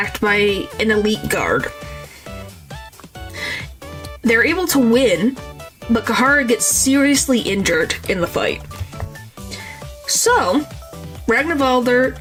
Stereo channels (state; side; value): identical; both; correlation 1.00